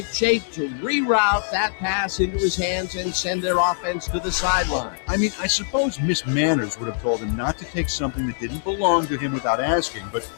shape to reroute that pass into his hands and send their offense to the sideline. I mean, I suppose Miss Manners would have told him not to take something that didn't belong to him without asking, but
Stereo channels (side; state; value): right; silent; digital silence